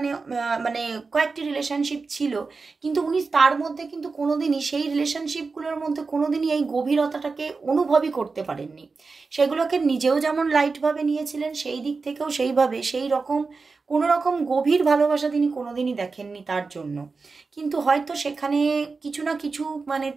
মানে কয়েকটি রিলেশনশিপ ছিল, কিন্তু উনি তার মধ্যে কিন্তু কোনোদিনই সেই রিলেশনশিপগুলোর মধ্যে কোনোদিনই এই গভীরতাটাকে অনুভবই করতে পারেননি। সেগুলোকে নিজেও যেমন লাইটভাবে নিয়েছিলেন, সেই দিক থেকেও সেইভাবে সেই রকম কোনো রকম গভীর ভালোবাসা তিনি কোনোদিনই দেখেননি তার জন্য। কিন্তু হয়তো সেখানে কিছু না কিছু মানে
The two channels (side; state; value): left; quieter; 4.3 dB